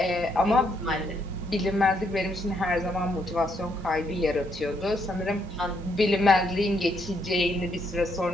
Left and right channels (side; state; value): both; normal; correlation 0.74